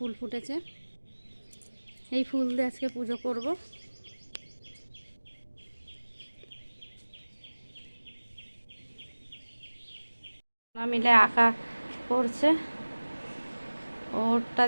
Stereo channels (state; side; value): inverted; both; correlation -1.00